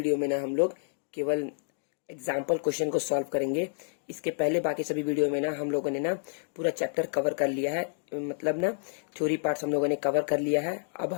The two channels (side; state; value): right; silent; digital silence